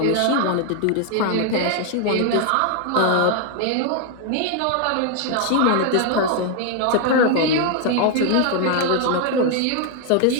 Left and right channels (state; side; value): different; both; correlation 0.00